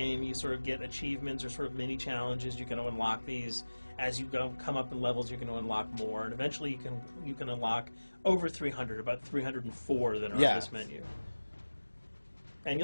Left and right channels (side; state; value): both; inverted; correlation -1.00